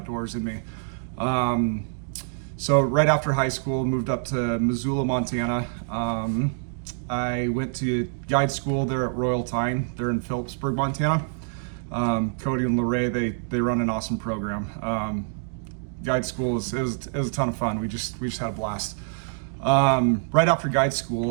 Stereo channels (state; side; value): silent; left; digital silence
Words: in me. So right after high school, moved up to Missoula, Montana. I went to guide school there at Royal Tyne. They're in Phillipsburg, Montana. Cody and Lorraine, they run an awesome program. Guide school it was a ton of fun. We just had a blast. Right after guide